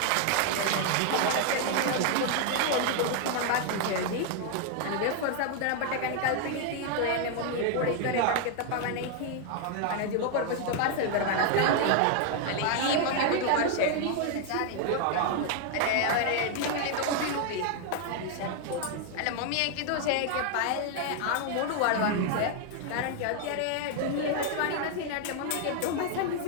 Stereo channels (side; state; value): both; different; correlation 0.00